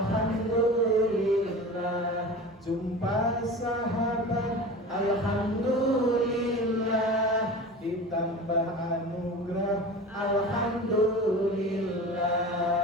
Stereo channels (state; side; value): normal; both; correlation 0.34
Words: jumpa sahabat alhamdulillah, ditambah anugerah